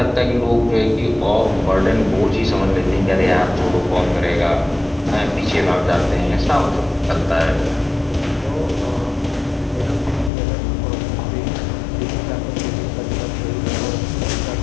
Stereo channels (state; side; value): drops out; right; at 10.3 s